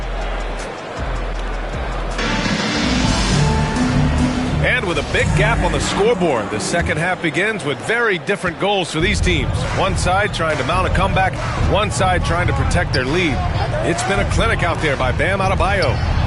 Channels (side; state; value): both; identical; correlation 1.00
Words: And with a big gap on the scoreboard, the second half begins with very different goals for these teams. One side trying to mount a comeback, one side trying to protect their lead. It's been a clinic out there by Bam Adebayo.